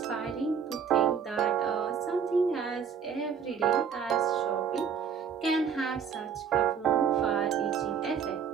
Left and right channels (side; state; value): left; quieter; 7.0 dB